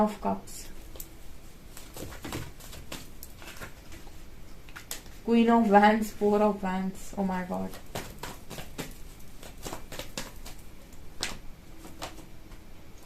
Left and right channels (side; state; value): both; identical; correlation 1.00